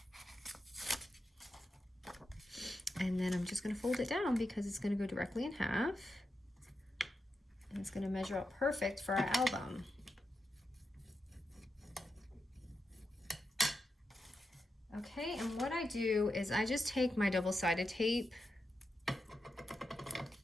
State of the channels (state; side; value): normal; both; correlation 0.88